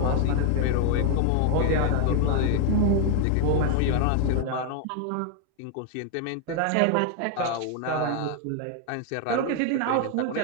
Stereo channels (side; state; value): both; different; correlation 0.00